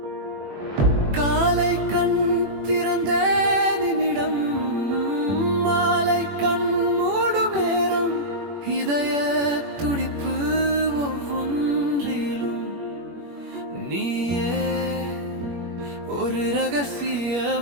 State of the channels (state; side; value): late; left; 21 ms